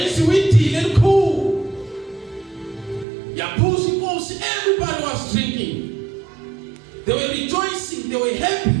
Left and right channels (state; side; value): drops out; left; at 3.1 s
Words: she went to cool, Yapusi ghost, everybody was drinking. They were rejoicing, they were